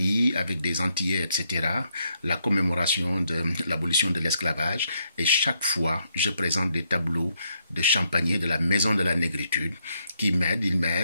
avec des Antillais, etc., la commémoration de l'abolition de l'esclavage et chaque fois, je présente des tableaux de Champagny, de la Maison de la Négritude, qui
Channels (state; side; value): inverted; both; correlation -0.77